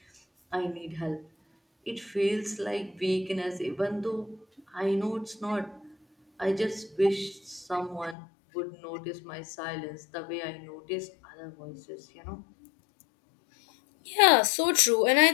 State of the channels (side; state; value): right; drops out; at 8.2 s